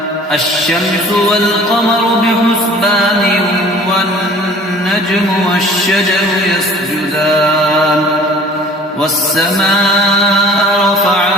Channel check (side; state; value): both; normal; correlation 0.48